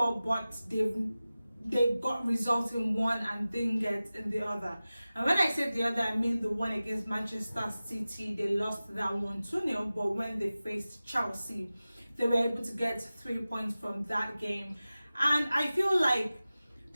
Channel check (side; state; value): both; inverted; correlation -0.96